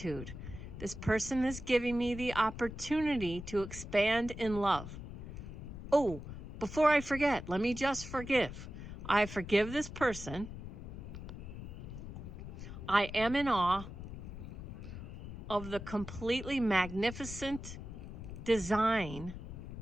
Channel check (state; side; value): noise; left; rumble, 10 dB below the sound